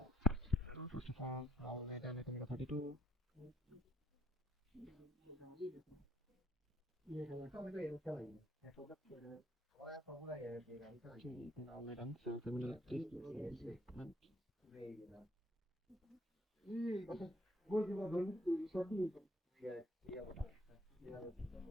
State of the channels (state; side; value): normal; both; correlation 0.63